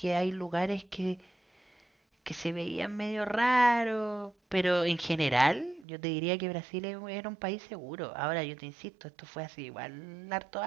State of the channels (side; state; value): left; drops out; at 5.9 s